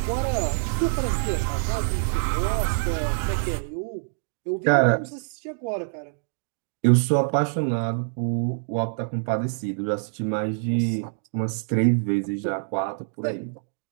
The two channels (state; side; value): silent; left; digital silence